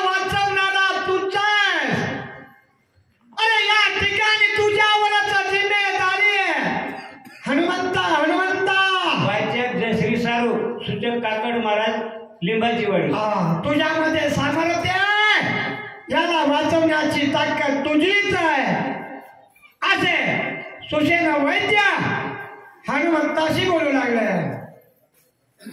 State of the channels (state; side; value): identical; both; correlation 1.00